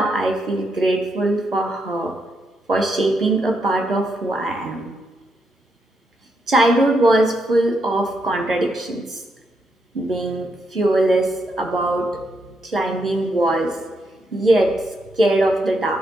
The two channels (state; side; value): normal; both; correlation 0.80